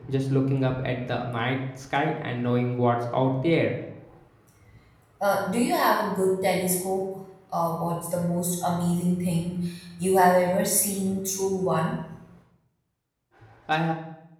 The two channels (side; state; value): both; identical; correlation 1.00